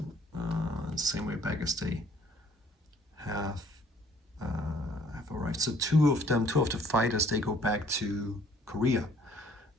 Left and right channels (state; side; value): normal; both; correlation 0.59